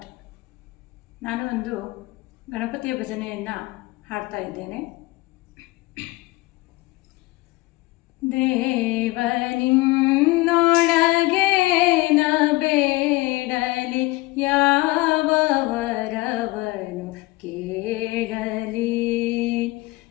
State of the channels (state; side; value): quieter; right; 21.3 dB